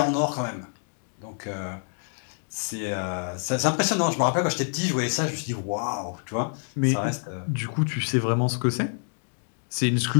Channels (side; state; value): right; silent; digital silence